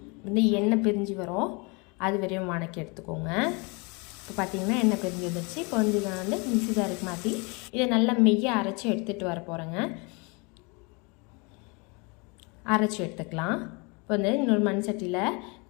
வந்து எண்ணெய் பிரிஞ்சு வரும், அது வரையும் வணக்கி எடுத்துக்கோங்க. இப்போ பார்த்திங்கன்னா எண்ணெய் பிரிஞ்சு வந்துருச்சு. இப்போ வந்து நான் வந்து மிக்ஸி ஜாருக்கு மாற்றி இதை நல்லா மெய்யாக அரைச்சி எடுத்துகிட்டு வர போகிறேங்க. அரைச்சி எடுத்துக்கலாம். இப்போ வந்து இன்னொரு மண் சட்டியில்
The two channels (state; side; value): quieter; right; 30.2 dB